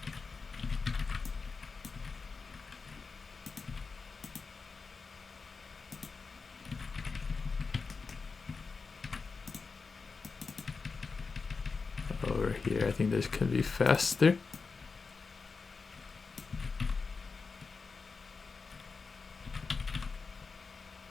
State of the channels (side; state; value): right; quieter; 4.6 dB